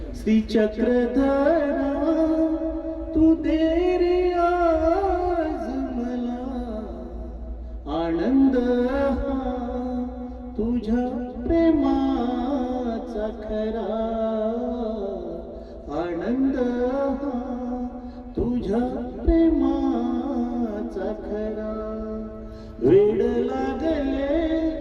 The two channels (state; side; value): identical; both; correlation 1.00